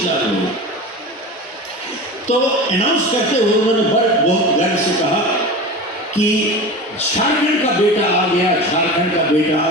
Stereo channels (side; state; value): both; normal; correlation 0.31